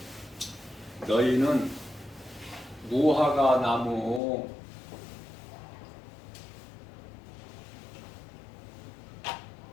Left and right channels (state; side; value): drops out; right; at 4.2 s